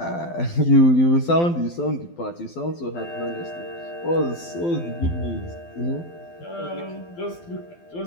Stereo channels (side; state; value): right; late; 12 ms